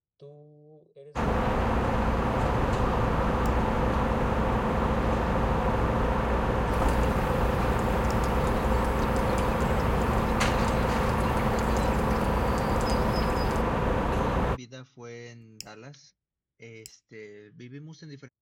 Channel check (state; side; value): identical; both; correlation 1.00